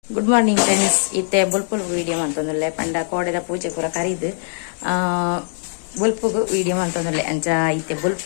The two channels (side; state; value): right; silent; digital silence